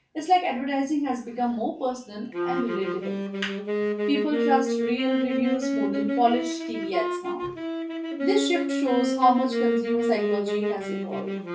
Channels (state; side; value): identical; both; correlation 1.00